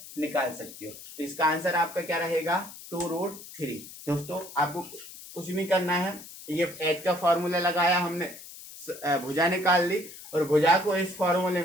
निकाल सकते हो। तो इसका आंसर आपका क्या रहेगा, 2√3। दोस्तों आपको कुछ नहीं करना है, ये एच का फॉर्मूला लगाया हमने, भुजा निकाल ली, और भुजा को इस फॉर्मूले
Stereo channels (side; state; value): left; noise; hiss, 15 dB below the sound